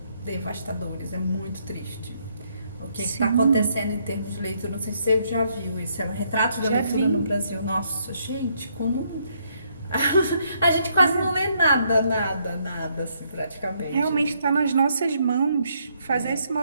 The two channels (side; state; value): both; inverted; correlation -0.73